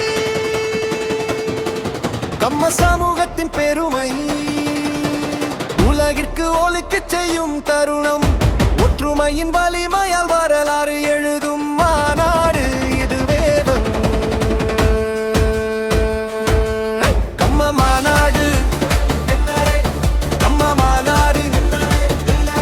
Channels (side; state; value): both; identical; correlation 1.00